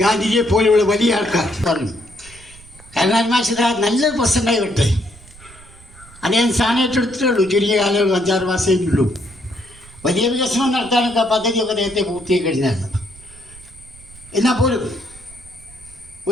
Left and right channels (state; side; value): noise; right; rumble, 22 dB below the sound